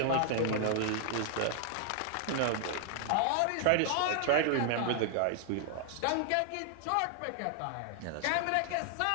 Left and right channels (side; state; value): both; different; correlation 0.00